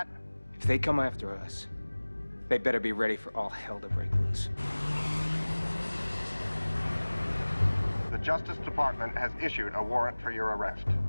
If they come after us, they better be ready for all hell to break loose. The Justice Department has issued a warrant for your arrest.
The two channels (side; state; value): both; inverted; correlation -1.00